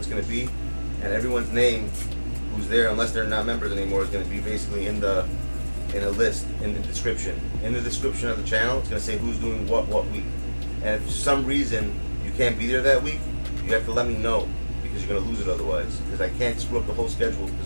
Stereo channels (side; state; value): both; inverted; correlation -1.00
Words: gonna be, and everyone's name who's there, unless they're not members anymore, is gonna be basically in a list in the description. In the description of the channel, it's gonna say who's doing what week. And if for some reason you can't be there that week, you have to let me know, because you're gonna lose it otherwise. Because I can't screw up the whole schedule.